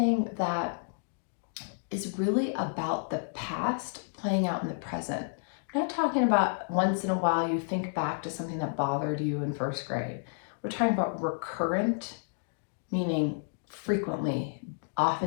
that is really about the past playing out in the present. I'm not talking about once in a while you think back to something that bothered you in first grade. We're talking about recurrent, meaning frequently,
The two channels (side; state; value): right; silent; digital silence